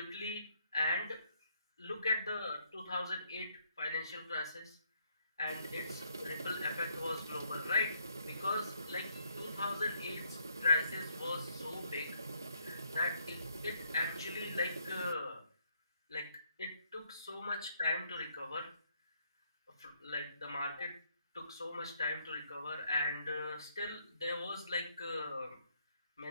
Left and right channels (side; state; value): both; inverted; correlation -0.71